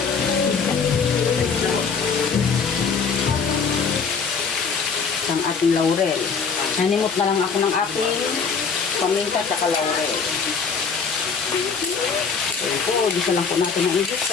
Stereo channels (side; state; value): right; quieter; 5.6 dB